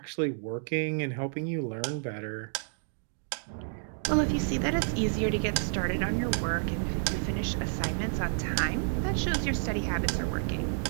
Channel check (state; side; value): silent; left; digital silence